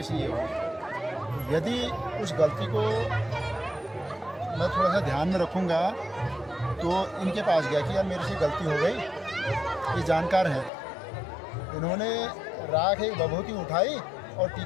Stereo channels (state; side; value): drops out; right; at 10.7 s